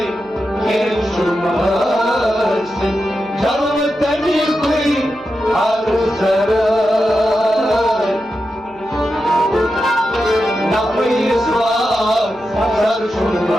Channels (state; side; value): noise; right; hum, 27 dB below the sound